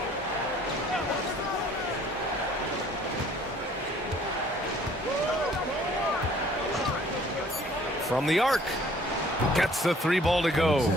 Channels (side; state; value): both; normal; correlation 0.56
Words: From the arc. Gets the 3 ball to go.